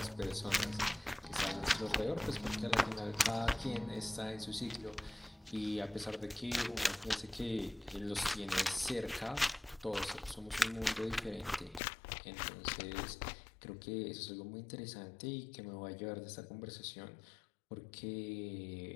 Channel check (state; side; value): drops out; right; at 11.8 s